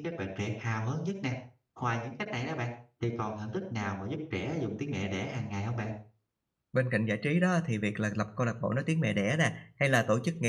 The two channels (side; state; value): both; identical; correlation 1.00